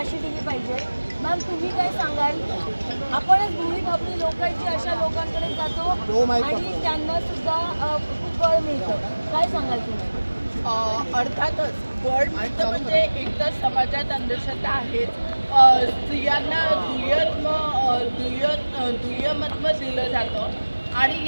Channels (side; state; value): both; inverted; correlation -1.00